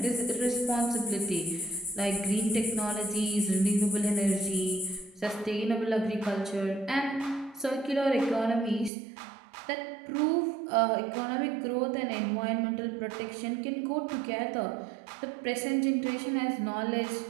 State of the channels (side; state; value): left; drops out; at 8.9 s